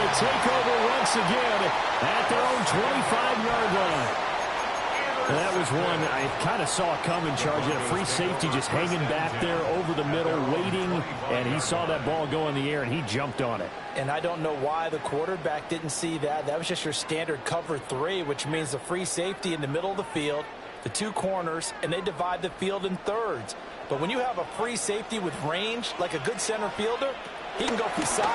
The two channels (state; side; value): identical; both; correlation 1.00